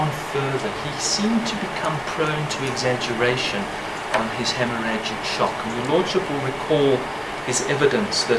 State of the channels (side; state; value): both; identical; correlation 1.00